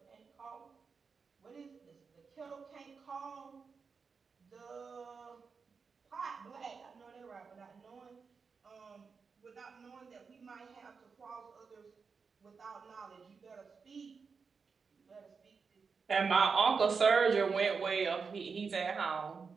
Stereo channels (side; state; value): left; quieter; 5.3 dB